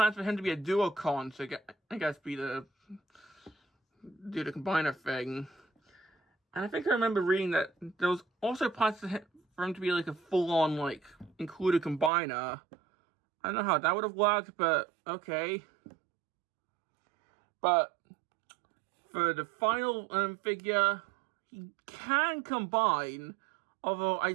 for him to be a duocon, so I guess do the combiner thing. And I think I remember reading that there was also plans for him to be like a full-on, like, included combiner. I don't know how that would have worked, but okay. But for the final figure, he can combine, although I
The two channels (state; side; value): drops out; left; at 12.1 s